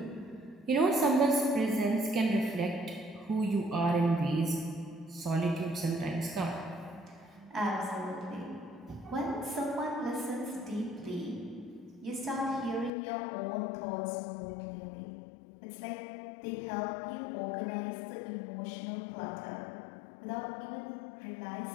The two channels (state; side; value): drops out; right; at 12.9 s